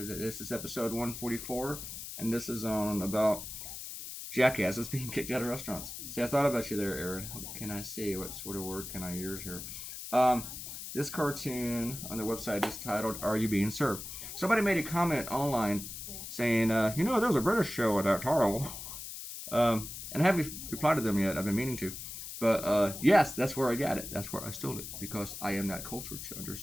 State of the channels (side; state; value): left; noise; hiss, 9 dB below the sound